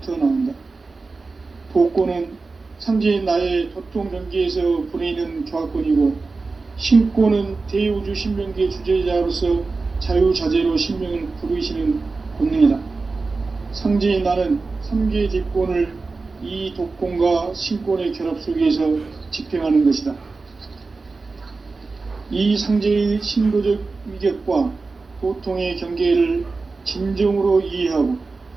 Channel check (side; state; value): left; quieter; 3.9 dB